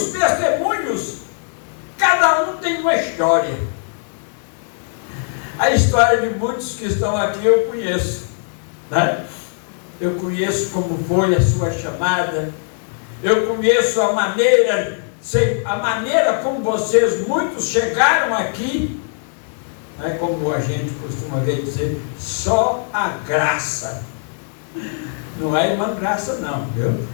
testemunhos, cada um tem uma história. A história de muitos que estão aqui eu conheço, né? Eu conheço como foi a sua chamada, Eu conheço a maneira como vocês, muitos chegaram aqui, é como a gente costuma ver dizer, só a graça. Não é a irmã Graça não, viu?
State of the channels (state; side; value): silent; right; 66 dB below the other